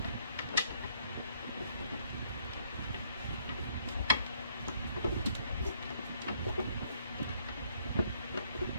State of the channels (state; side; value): inverted; both; correlation -0.67